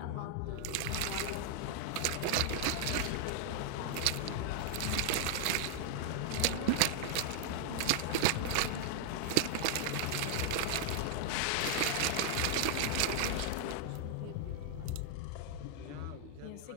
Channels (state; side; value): different; both; correlation 0.00